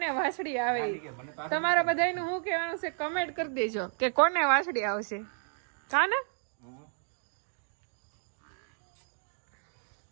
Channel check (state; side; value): silent; left; 56 dB below the other